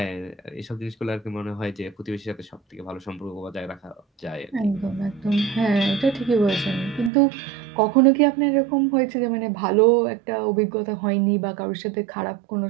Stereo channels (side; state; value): left; drops out; at 7.1 s